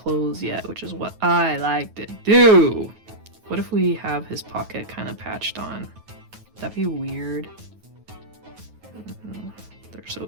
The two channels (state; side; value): late; left; 9.3 ms